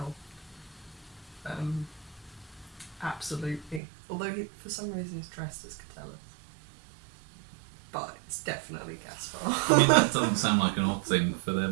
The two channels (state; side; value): drops out; left; at 3.8 s